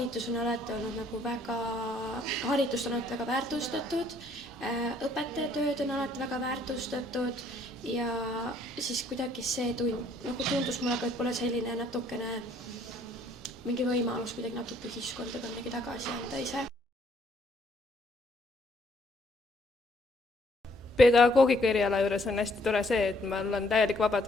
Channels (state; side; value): normal; both; correlation 0.65